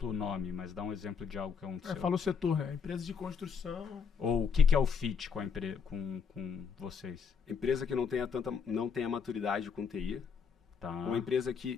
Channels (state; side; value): quieter; right; 6.2 dB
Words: o nome, mas dá um exemplo de algo que aconteceu. Fala o setor, né? Empresa de construção. Ou o que é o fit com, com vocês? Empresa que não tenha maturidade com TI. Tá. Uma empresa